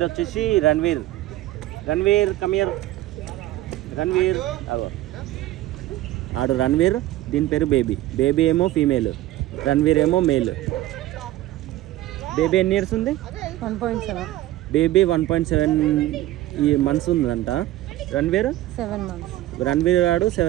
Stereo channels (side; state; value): left; quieter; 15.5 dB